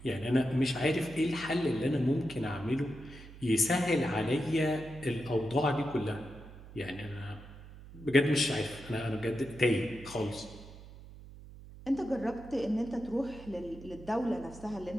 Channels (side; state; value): right; noise; hum, 17 dB below the sound